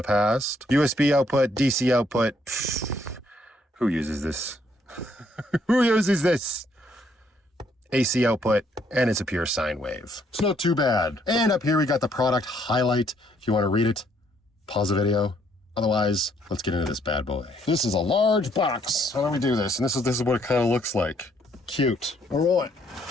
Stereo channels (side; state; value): both; normal; correlation 0.69